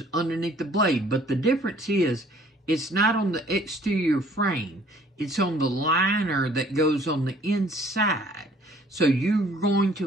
underneath the blade, but the difference is it's not on the exterior frame. It's on the liner that goes on the inside. So you're going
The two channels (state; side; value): normal; both; correlation 0.57